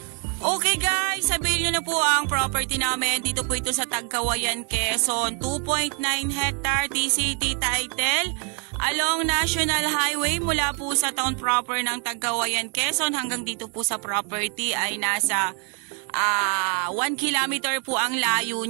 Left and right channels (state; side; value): quieter; left; 38.7 dB